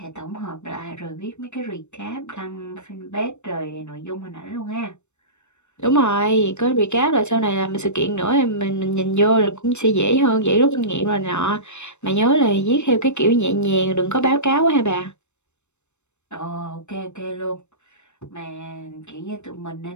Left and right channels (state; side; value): late; right; 0.82 ms